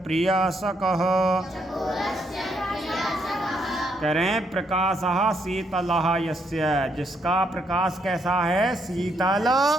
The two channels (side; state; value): both; normal; correlation 0.74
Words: प्रियासकः। करें प्रकाशः शीतलः यस्य, जिसका प्रकाश कैसा है? शीतल।